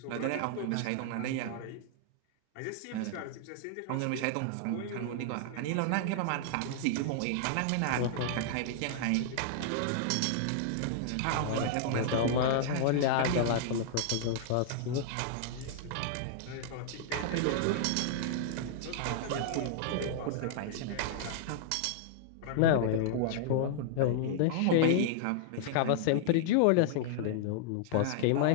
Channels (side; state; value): both; different; correlation -0.01